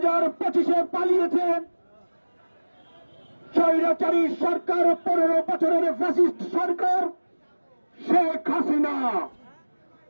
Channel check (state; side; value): inverted; both; correlation -1.00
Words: পালিয়েছে স্বৈরাচারী সরকার, 15 বছরের ফ্যাসিস্ট সরকার শেখ হাসিনা।